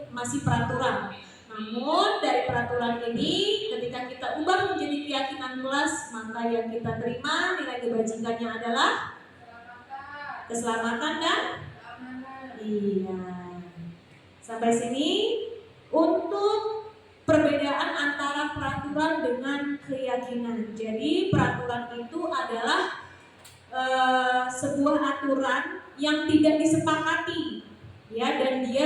masih peraturan. Namun dari peraturan ini, ketika kita ubah menjadi keyakinan kelas, maka yang kita terima nilai kebajikannya adalah keselamatan dan iya. Sampai sini untuk perbedaan antara peraturan dengan keyakinan. Jadi peraturan itu adalah sebuah aturan yang tidak disepakati, ya, dan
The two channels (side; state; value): both; identical; correlation 1.00